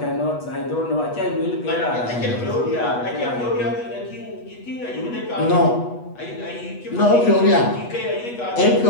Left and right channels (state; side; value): late; right; 8.2 ms